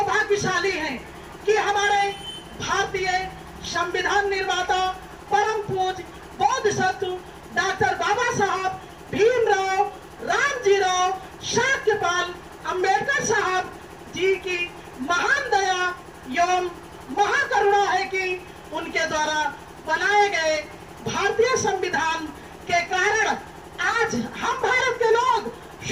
हैं कि हमारे भारतीय संविधान निर्माता परम पूज्य बोधिसत्व डॉक्टर बाबा साहब भीमराव रामजीराव शाक्यपाल अंबेडकर साहब जी की महान दया एवं महाकरुणा है कि उनके द्वारा बनाए गए भारतीय संविधान के कारण आज हम भारत के लोग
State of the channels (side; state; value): both; identical; correlation 1.00